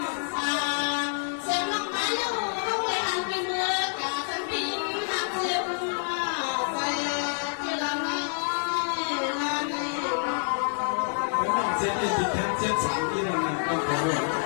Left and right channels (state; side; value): silent; right; digital silence